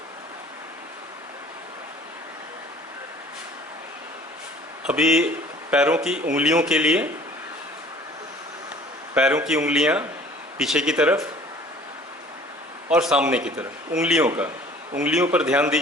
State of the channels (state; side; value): normal; both; correlation 0.50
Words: अभी पैरों की उंगलियों के लिए, पैरों की उंगलियां पीछे की तरफ और सामने की तरफ। उंगलियों पर ध्यान